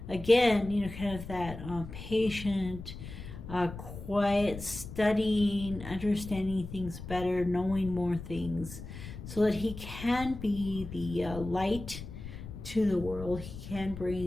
again. You know, kind of that patient, quiet, studying, understanding things better, knowing more things, so that he can be the light to the world. He can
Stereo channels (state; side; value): noise; left; rumble, 11 dB below the sound